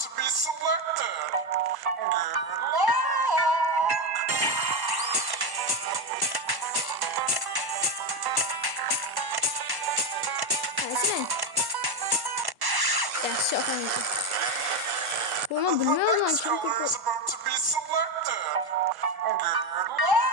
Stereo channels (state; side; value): late; left; 1.1 ms